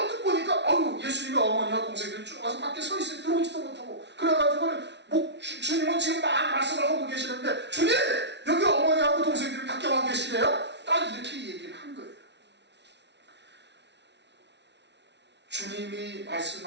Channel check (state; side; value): late; left; 0.50 ms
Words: 보니까 예수님의 어머니와 동생들이 쭉 와서 밖에 서 있어요. 들어오지도 못하고. 그래가지고는 주님은 지금 막 말씀을 하고 계시는데 주님! 여기 어머니하고 동생들이 밖에 와 계시네요? 딱 이렇게 얘기를 한 거예요. 주님이